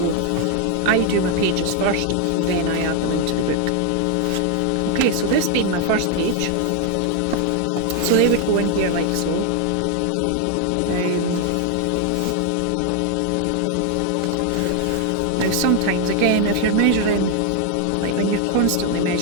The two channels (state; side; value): different; both; correlation 0.00